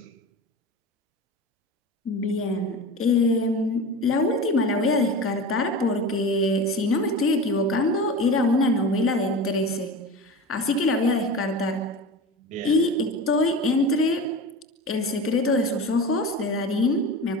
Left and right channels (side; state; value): both; normal; correlation 0.30